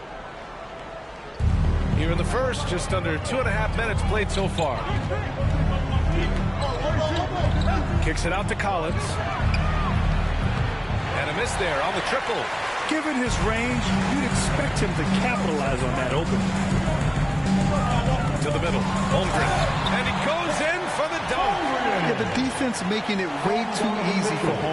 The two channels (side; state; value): both; identical; correlation 1.00